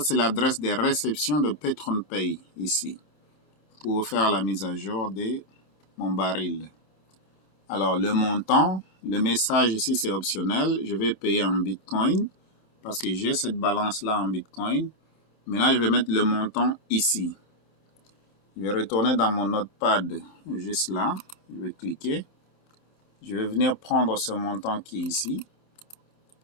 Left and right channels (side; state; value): right; late; 31 ms